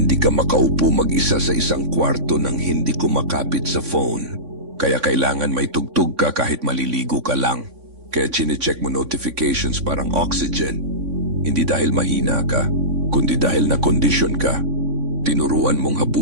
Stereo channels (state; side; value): late; left; 3.5 ms